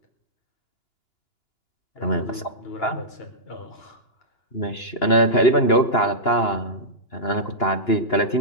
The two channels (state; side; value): late; right; 2.9 ms